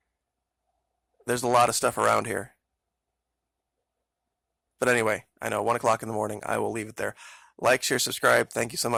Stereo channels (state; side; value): identical; both; correlation 1.00